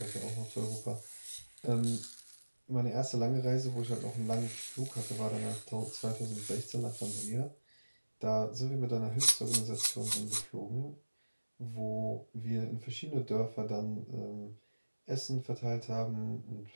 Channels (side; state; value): both; inverted; correlation -1.00